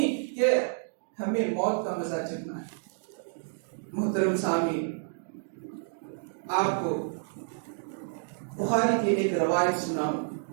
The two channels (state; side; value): silent; left; digital silence